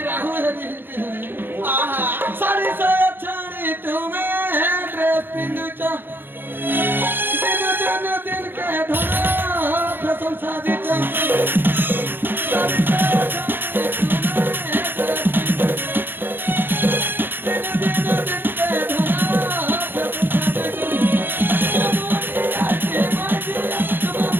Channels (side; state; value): left; late; 0.099 ms